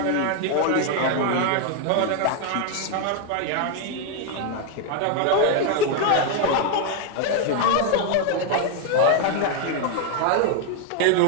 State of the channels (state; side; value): different; both; correlation 0.01